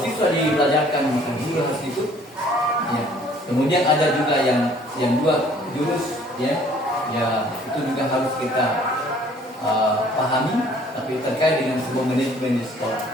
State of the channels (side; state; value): both; normal; correlation 0.57